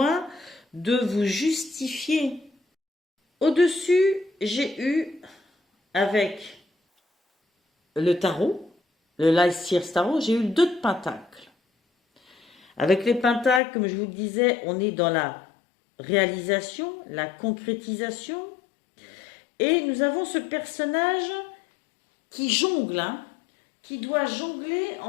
de vous justifier. Au-dessus, j'ai eu avec le tarot, le Life Seers Tarot, j'ai eu le 2 de Pentacles. Avec les Pentacles, comme je vous le disais, on est dans la réalisation, la concrétisation. Et nous avons ce personnage qui jongle, qui doit jongler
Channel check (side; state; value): right; drops out; at 13.6 s